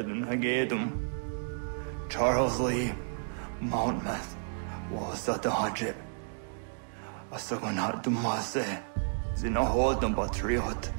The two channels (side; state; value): left; silent; digital silence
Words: Hagedum. Charles Lee. Mountmouth. Was at the Hajib. Asagonat Dumase. Zinahodum Patriot.